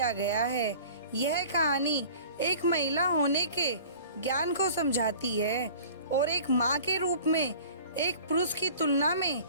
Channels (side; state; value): both; inverted; correlation -0.44